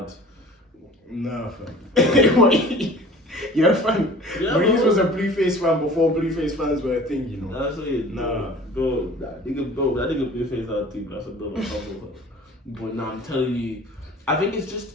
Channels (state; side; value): normal; both; correlation 0.45